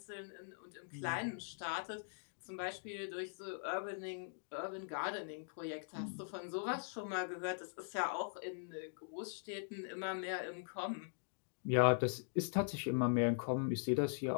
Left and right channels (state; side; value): silent; right; digital silence